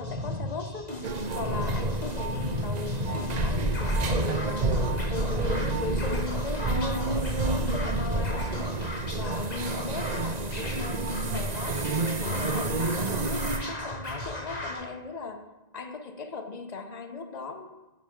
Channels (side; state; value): left; late; 1.9 ms